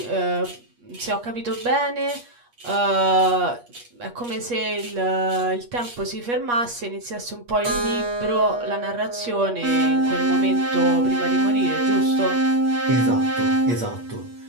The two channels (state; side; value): late; left; 8.4 ms